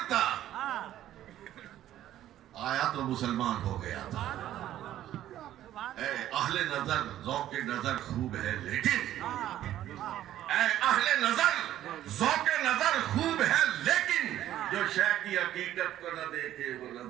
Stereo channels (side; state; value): left; quieter; 12.6 dB